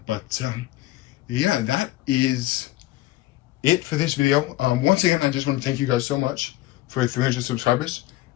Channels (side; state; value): right; quieter; 16.3 dB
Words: Yeah, that is it for this video. Once again, I just want to thank you guys so much for 300 subscribers,